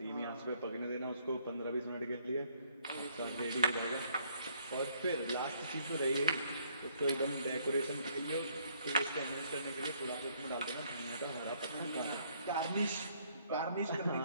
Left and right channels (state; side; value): inverted; both; correlation -0.67